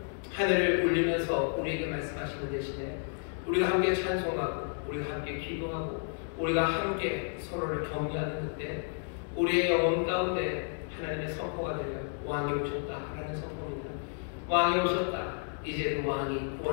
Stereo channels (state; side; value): silent; right; 57 dB below the other